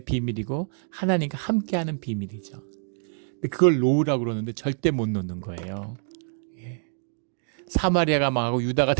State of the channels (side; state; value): left; silent; 61 dB below the other